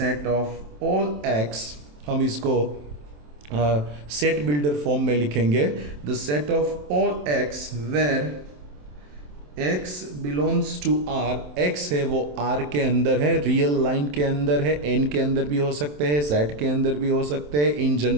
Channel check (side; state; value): left; late; 27 ms